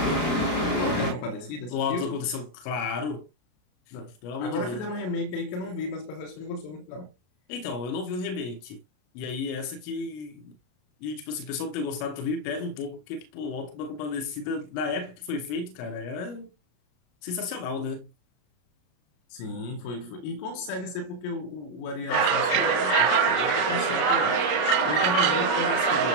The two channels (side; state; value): right; late; 33 ms